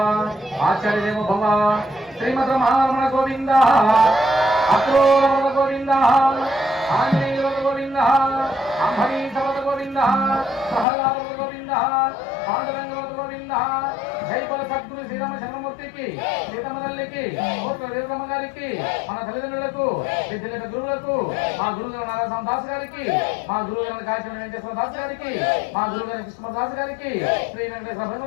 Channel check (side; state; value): right; drops out; at 10.9 s